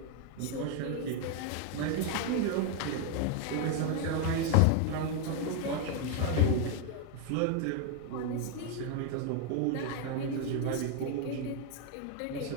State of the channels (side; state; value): both; different; correlation 0.00